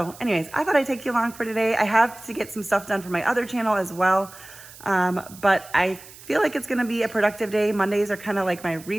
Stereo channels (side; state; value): right; noise; hiss, 19 dB below the sound